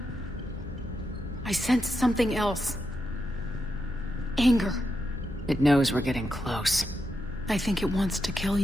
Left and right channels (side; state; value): both; normal; correlation 0.85